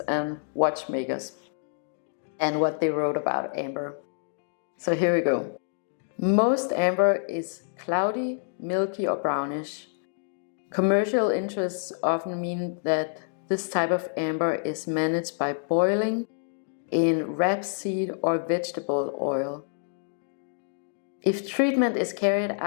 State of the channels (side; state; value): right; silent; digital silence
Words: and Watchmakers, and what they wrote about amber. So here we go. Most amber is cloudy, milky, or brownish. Commercial interests often mean that this type of amber is managed by boiling in rapeseed or vegetable oil. If treatment is carried